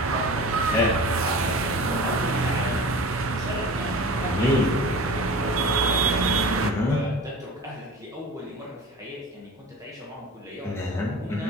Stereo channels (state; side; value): normal; both; correlation 0.37